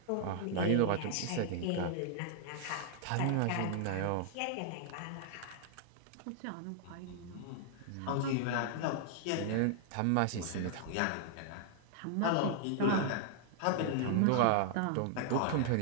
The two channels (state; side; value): different; both; correlation -0.01